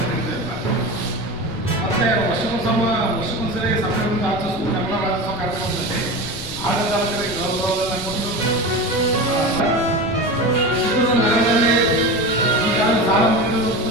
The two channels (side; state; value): left; noise; rumble, 14 dB below the sound